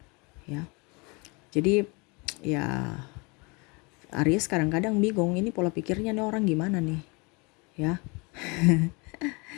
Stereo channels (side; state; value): right; quieter; 28.9 dB